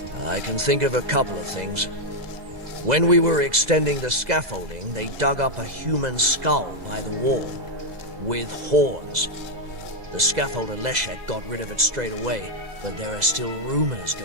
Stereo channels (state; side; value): late; left; 2.0 ms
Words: I can think of a couple of things. When we were extending the scaffolding, they dug up a human skull by the wall, with horns. The scaffolder Leszek got rid of it straight away, but there are still rumors